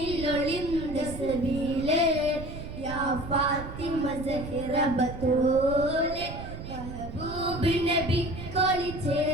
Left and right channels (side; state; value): right; noise; rumble, 10 dB below the sound